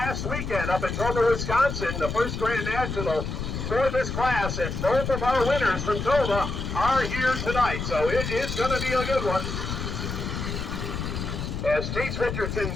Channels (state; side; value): noise; left; rumble, 4 dB below the sound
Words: weekend up in Dorr, Wisconsin, the first Grand National for this class, and both of our winners from Tova are here tonight, so it is going to be a good one. As Chase Richardson